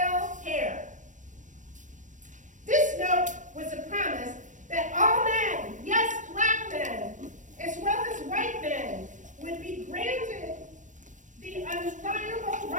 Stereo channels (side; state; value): left; late; 0.37 ms